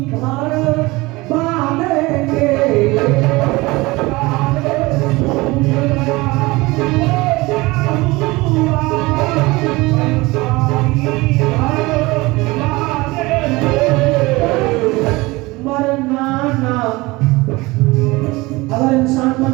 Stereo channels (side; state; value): left; quieter; 22.1 dB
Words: भर बांधेंगे। मरना ना, अगर इंसान